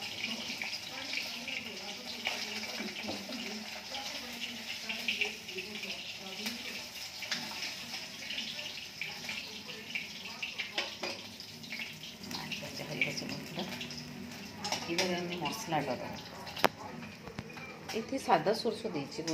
এবারে আমি মশলাটা দেবো। এতে সাদা সরষে দিয়েছি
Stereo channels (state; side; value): identical; both; correlation 1.00